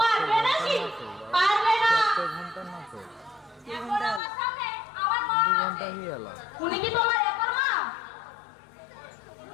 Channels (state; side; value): drops out; right; at 4.2 s